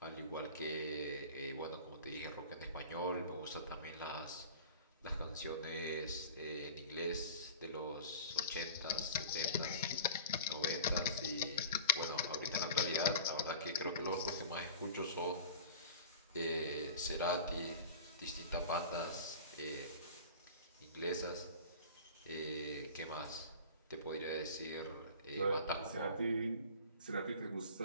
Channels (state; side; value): inverted; both; correlation -0.39